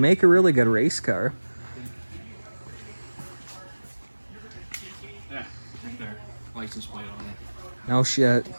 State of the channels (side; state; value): both; inverted; correlation -1.00